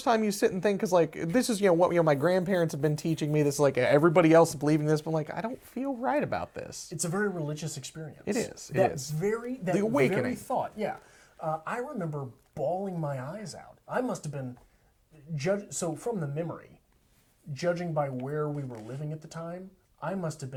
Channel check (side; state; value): both; identical; correlation 1.00